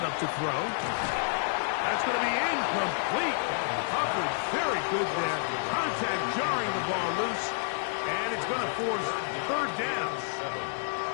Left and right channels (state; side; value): silent; right; digital silence